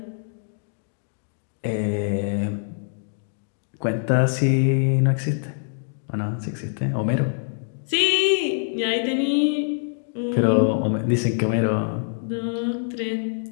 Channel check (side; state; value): right; silent; digital silence